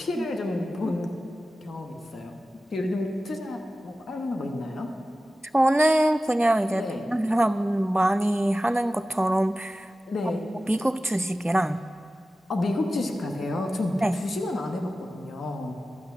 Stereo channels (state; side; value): normal; both; correlation 0.95